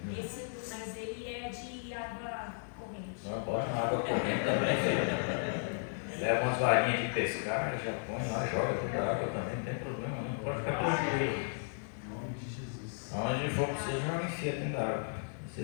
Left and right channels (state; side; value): silent; right; digital silence